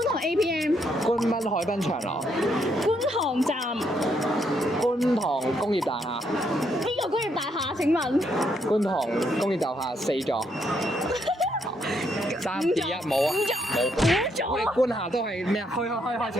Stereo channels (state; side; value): normal; both; correlation 0.75